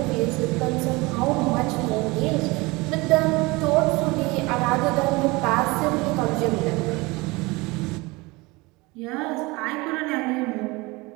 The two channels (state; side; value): quieter; left; 23.9 dB